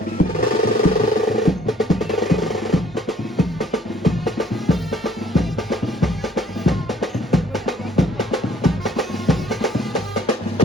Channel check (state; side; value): normal; both; correlation 0.60